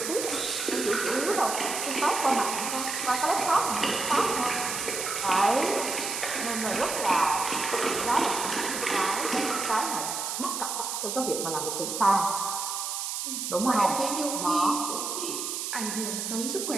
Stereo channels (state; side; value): noise; right; hiss, 3 dB below the sound